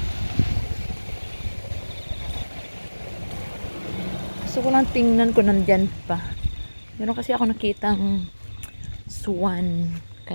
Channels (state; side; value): inverted; both; correlation -1.00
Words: Gusto ko lang tingnan ko nandyan pa. Meron kasi ako nakitang swan